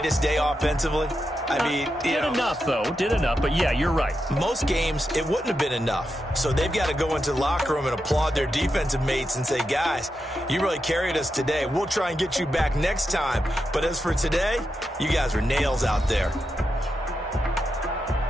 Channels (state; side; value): normal; both; correlation 0.87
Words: day offensively? I mean, did enough, though. Did enough. But, yeah, you're right. Most games, it wouldn't have been enough. So they've got to go into the locker room and applaud their defensive mates and say, guys, you really carried us today. We'll try and get you back next time. But as for today, you guys were nails out there.